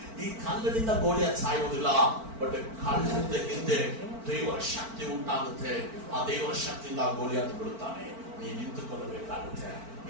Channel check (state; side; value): late; left; 4.5 ms